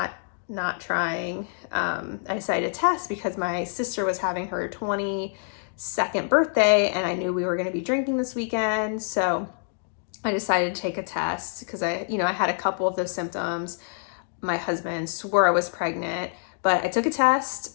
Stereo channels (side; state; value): right; silent; digital silence